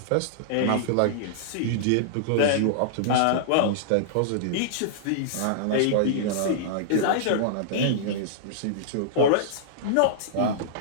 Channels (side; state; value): both; different; correlation -0.02